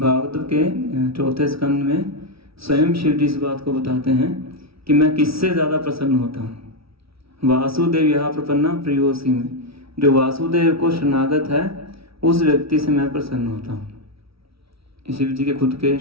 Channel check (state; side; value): late; left; 0.76 ms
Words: के 4थे स्कंद में स्वयं शिव जी इस बात को बताते हैं कि मैं किससे ज़्यादा प्रसन्न होता हूँ। वासुदेव यह प्रपन्ना प्रियोसी में, जो वासुदेव को शरणागत है उस व्यक्ति से मैं प्रसन्न होता हूँ। शिव जी के खुद के